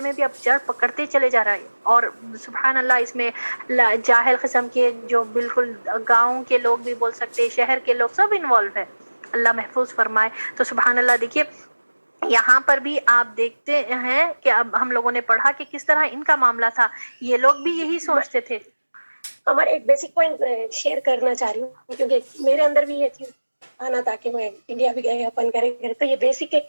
میں بھی اب جڑ پکڑتے چلے جا رہا ہے، اور سبحان اللہ اس میں جاہل قسم کے جو بالکل گاؤں کے لوگ بھی بول سکتے، شہر کے لوگ سب انوالو ہے، اللہ محفوظ فرمائے۔ تو سبحان اللہ، دیکھیے یہاں پر بھی آپ دیکھتے ہیں کہ اب ہم لوگوں نے پڑھا کہ کس طرح ان کا معاملہ تھا، یہ لوگ بھی یہی سوچتے تھے۔ ہمارا ایک بیسک پوائنٹ شیئر کرنا چاہ رہی ہوں، کیونکہ میرے اندر بھی یہ چیز آنا تھا کہ میں انڈیا بھی گئے اپن کریں، تو یہ بیسک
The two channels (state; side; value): inverted; both; correlation -1.00